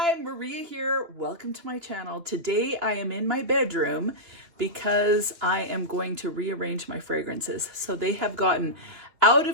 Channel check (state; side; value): late; left; 2.9 ms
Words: Maria here. Welcome to my channel. Today I am in my bedroom because I am going to rearrange my fragrances. So they have gotten out